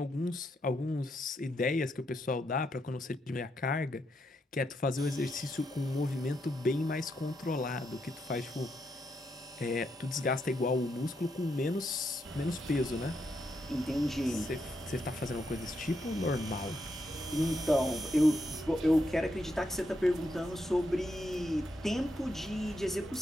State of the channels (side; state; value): both; normal; correlation 0.80